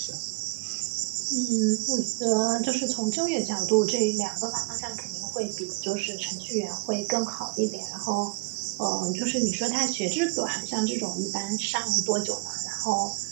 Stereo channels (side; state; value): left; quieter; 28.5 dB